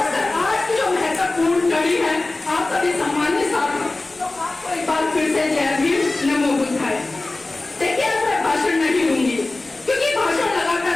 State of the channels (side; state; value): right; quieter; 3.1 dB